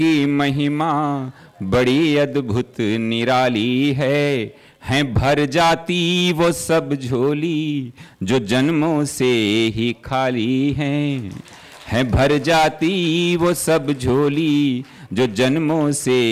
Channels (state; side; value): identical; both; correlation 1.00